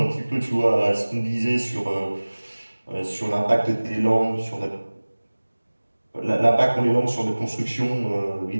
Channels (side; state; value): both; inverted; correlation -1.00